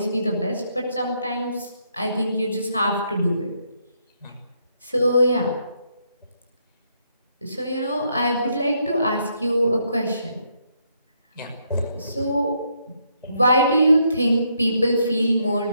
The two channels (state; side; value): inverted; both; correlation -0.75